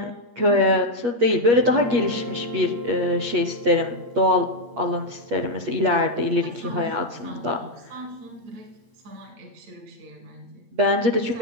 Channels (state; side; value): late; left; 8.4 ms